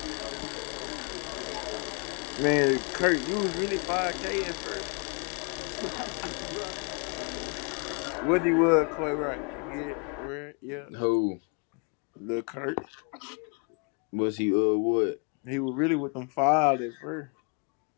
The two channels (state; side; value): quieter; right; 35.8 dB